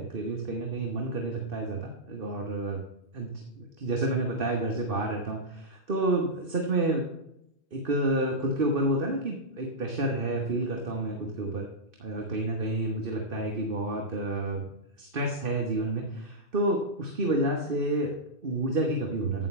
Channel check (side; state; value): left; late; 2.6 ms